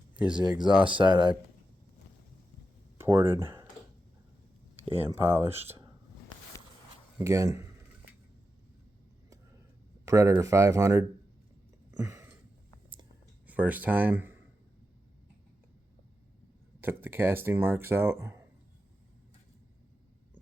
Here's the exhaust side I ported and polished. Again, Predator 500. First time. Took the casting marks out.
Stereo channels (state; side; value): normal; both; correlation 0.89